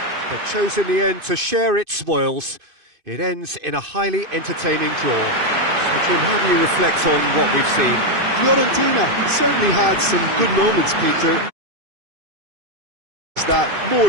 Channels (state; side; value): late; left; 2.5 ms